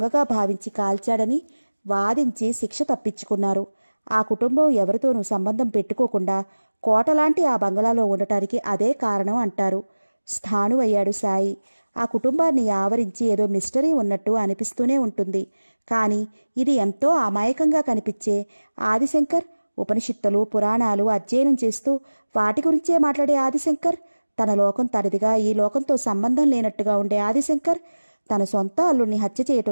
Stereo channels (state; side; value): inverted; both; correlation -1.00